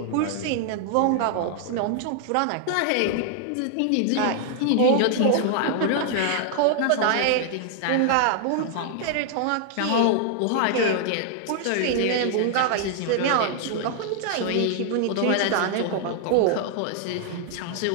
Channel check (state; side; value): different; both; correlation 0.00